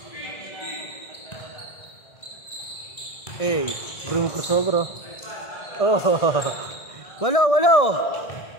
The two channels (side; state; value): right; late; 1.6 ms